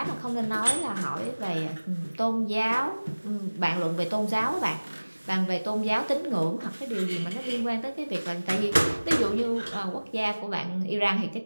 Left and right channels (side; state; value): both; inverted; correlation -1.00